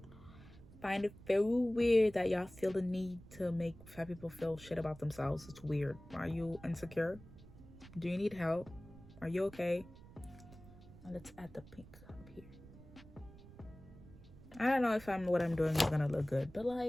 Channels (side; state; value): right; noise; rumble, 19 dB below the sound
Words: Find it very weird that y'all feel the need to make fat people feel shit about themselves. It's weird. Are you insecure? Do you need help? Are you okay? Now let's add the pink up here. I don't know if what I'm doing is gonna look good, but